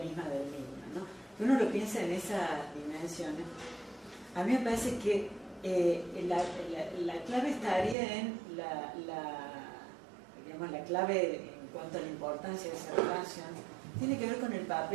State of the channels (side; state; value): left; drops out; at 8.0 s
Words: misma del niño, ¿no? Si uno lo piensa en esas dimensiones, a mí me parece que la clave estaría en la clave en cuanto a la importancia de esa relación, tiene que ver con el